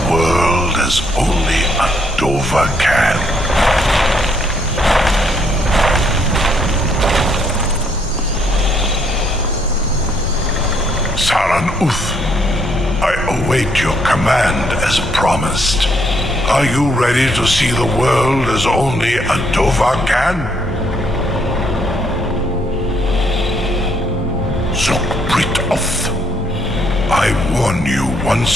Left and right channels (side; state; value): both; normal; correlation 0.71